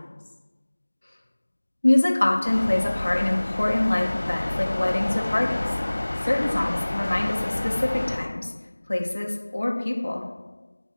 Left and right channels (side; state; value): both; inverted; correlation -1.00